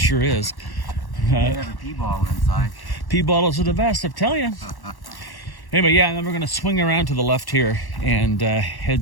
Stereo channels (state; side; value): late; right; 1.1 ms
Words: is. They have a pee bottle inside. Pea bottles are the best, I'm telling you. Anyway, yeah, and then we're going to swing around to the left here and